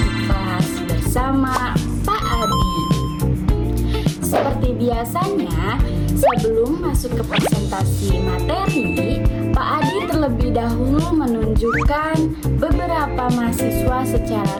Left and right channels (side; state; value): both; identical; correlation 1.00